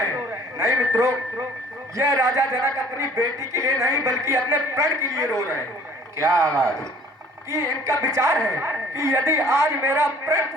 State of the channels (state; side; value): normal; both; correlation 0.54